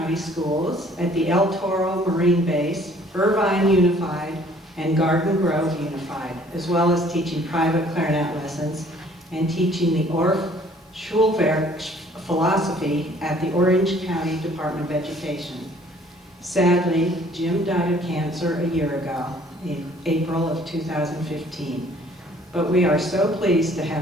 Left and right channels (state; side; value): normal; both; correlation 0.57